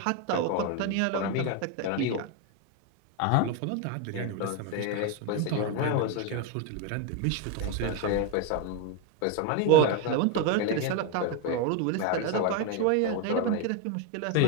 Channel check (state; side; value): different; both; correlation 0.02